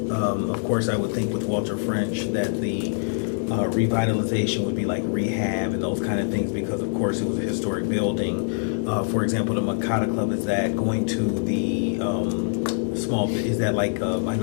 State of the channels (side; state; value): right; silent; digital silence